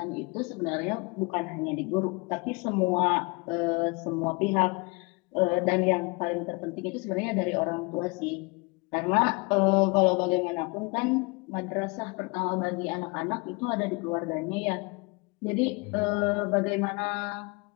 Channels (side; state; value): right; quieter; 28.6 dB